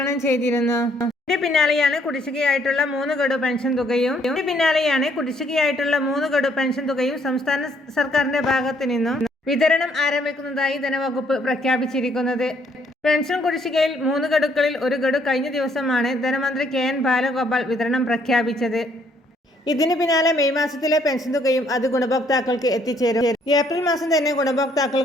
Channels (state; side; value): normal; both; correlation 0.67